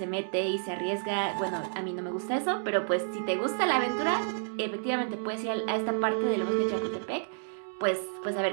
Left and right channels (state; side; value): silent; left; digital silence